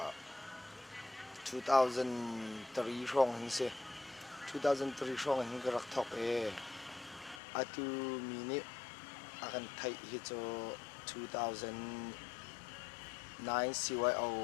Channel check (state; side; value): drops out; right; at 7.4 s